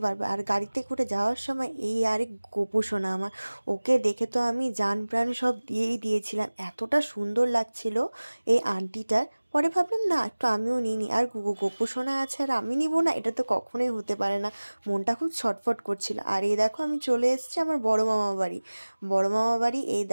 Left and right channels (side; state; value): both; inverted; correlation -1.00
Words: পারবে। আর গাড়িতে করে যাওয়ার সময় এই আরেক গোপু সোনা আমার, ওকে দেখে তো আমি জান প্রাণ সব দিয়েই দিয়েছিলাম, এতটা সুন্দর লাগছিল এই আন্টিটার। পরে ভাবলাম না, একটু আমিও নিই। আর গোপু সোনা আছে আর আমি নিব না, এটা তো কখনোই হতে পারে না। মনটা খুব ছটফট করছিল। আর এই দেখো আমি চলে এসেছি আমার বড় মামা বাড়ি। বড় মামা বাড়ি, এই